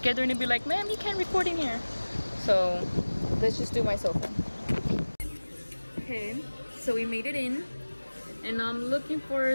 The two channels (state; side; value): inverted; both; correlation -1.00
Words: they're gonna be like, ma'am, you can't record in here. So let's just do my sofa. Okay, so we made it in. And I'm looking